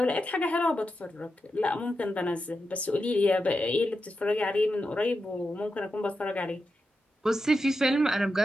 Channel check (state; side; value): normal; both; correlation 0.88